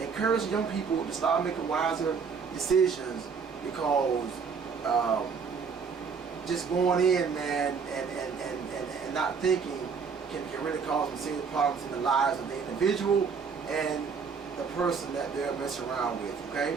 young people to start making wiser decisions, because just going in, man, and not thinking can really cause some serious problems in the lives of the individual and the person that they're messing around with.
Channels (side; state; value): left; quieter; 5.7 dB